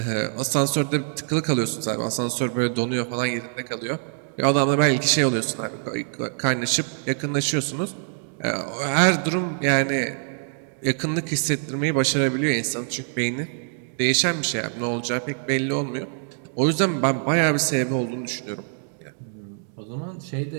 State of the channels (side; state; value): left; silent; digital silence